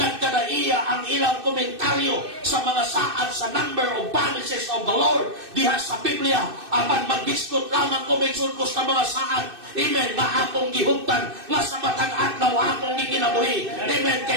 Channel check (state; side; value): late; left; 2.6 ms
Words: ang ilang komentaryo sa mga saad sa number of promises of the Lord diha sa Biblia. Apan maghiskot lamang ko maigsoon ko sa mga saad, amen, nga akong gihuptan, nga sa matang adlaw akong gikinabuhi. Amen.